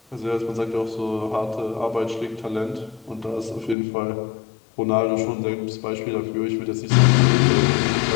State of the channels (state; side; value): drops out; right; at 3.8 s